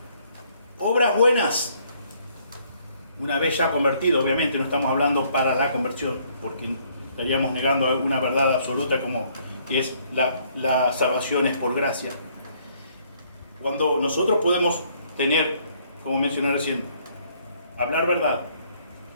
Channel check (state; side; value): inverted; both; correlation -0.65